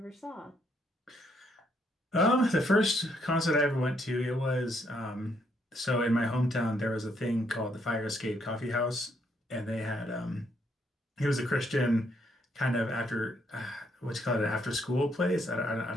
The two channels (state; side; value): normal; both; correlation 0.72